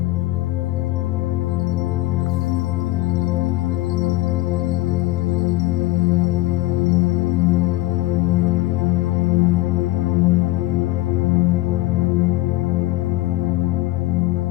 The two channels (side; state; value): right; quieter; 17.9 dB